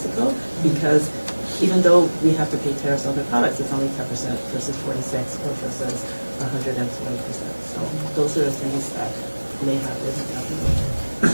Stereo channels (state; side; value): inverted; both; correlation -1.00